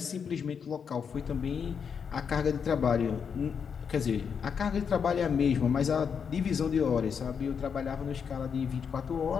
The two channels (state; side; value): quieter; right; 6.7 dB